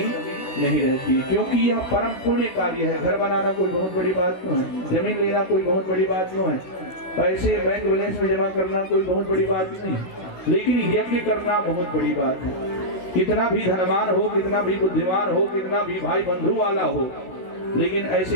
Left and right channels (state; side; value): late; right; 16 ms